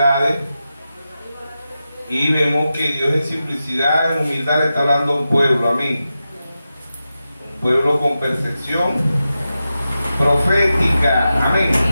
Y vemos que Dios en simplicidad, en humildad le está hablando a un pueblo. Amén. Un pueblo con percepción profética. Amén.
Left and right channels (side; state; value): both; inverted; correlation -0.91